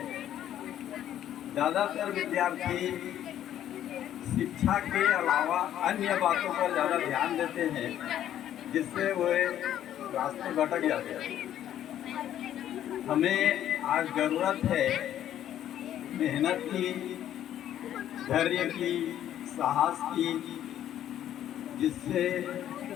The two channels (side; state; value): right; quieter; 11.3 dB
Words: ज़्यादातर विद्यार्थी शिक्षा के अलावा अन्य बातों पर ज़्यादा ध्यान देते हैं जिससे वो रास्ते भटक जाते हैं। हमें आज ज़रूरत है मेहनत की, धैर्य की, साहस की, जिससे